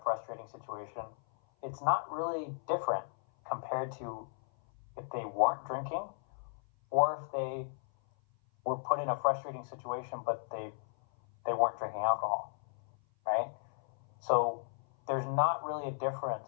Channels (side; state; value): right; silent; 54 dB below the other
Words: frustrating situation, it's not really different compared to if they weren't drinking, or if they were put in a frustrating situation but they weren't drinking alcohol, right? So there's not really a